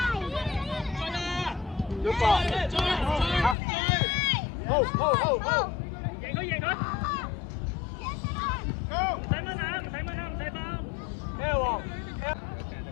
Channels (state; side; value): drops out; right; at 3.6 s